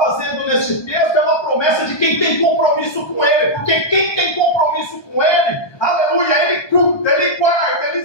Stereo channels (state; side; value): late; right; 1.2 ms